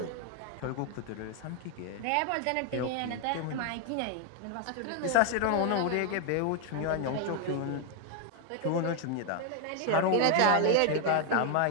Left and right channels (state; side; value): different; both; correlation 0.01